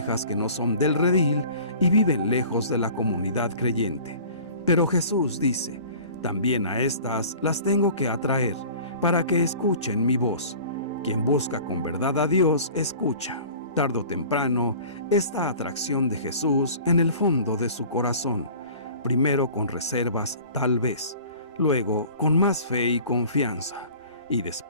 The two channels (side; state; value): both; inverted; correlation -0.44